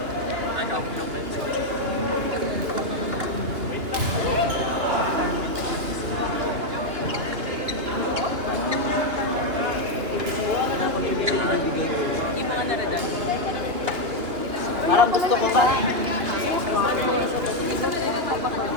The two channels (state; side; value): late; left; 2.9 ms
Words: Ano, global na. Yung mga naradan. Parang gusto ko sa...